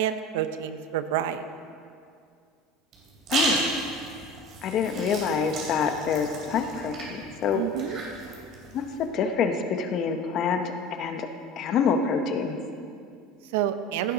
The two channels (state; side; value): normal; both; correlation 0.37